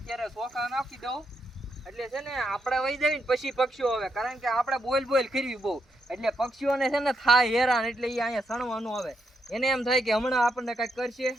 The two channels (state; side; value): normal; both; correlation 0.80